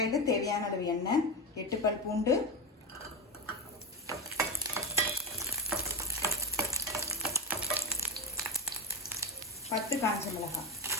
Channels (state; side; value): normal; both; correlation 0.15